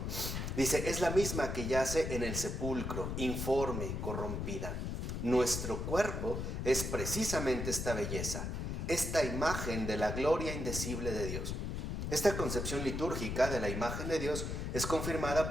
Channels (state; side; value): noise; left; rumble, 3 dB below the sound